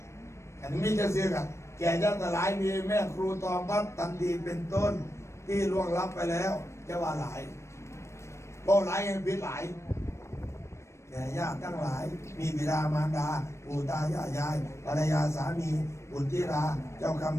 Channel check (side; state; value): right; late; 0.13 ms